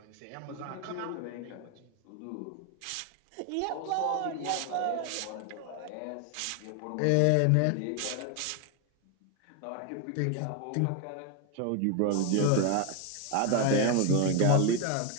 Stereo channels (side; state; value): both; different; correlation 0.01